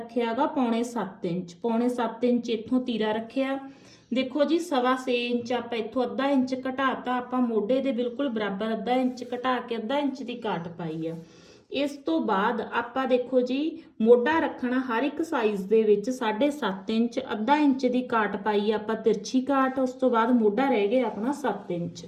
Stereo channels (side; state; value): both; identical; correlation 1.00